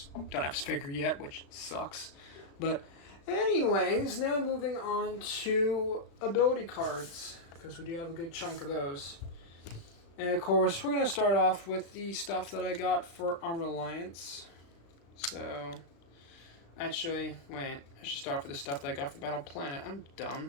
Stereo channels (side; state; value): right; late; 36 ms